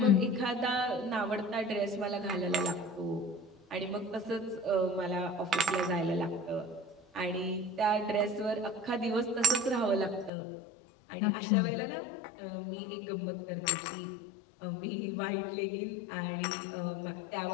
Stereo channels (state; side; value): drops out; right; at 10.3 s